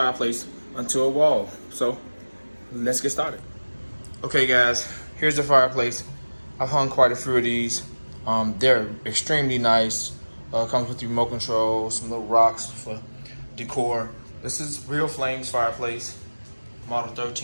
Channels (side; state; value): both; inverted; correlation -1.00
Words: onto a wall. So let's get started. Okay guys, here's the fireplace. I've hung quite a few of these. They're extremely nice. Comes with the remote control, some little rocks for decor. This is RealFlame's fireplace, model